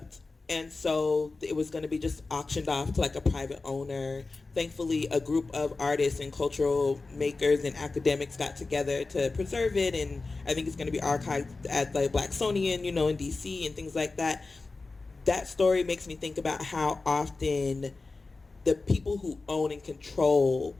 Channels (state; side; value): quieter; right; 3.7 dB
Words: And so it was going to be just auctioned off to like a private owner. Thankfully, a group of artists and cultural makers and academics got together to preserve it. And I think it's going to be archived at the Blacksonian, you know, in DC and things like that. That story makes me think about how often the people who own and control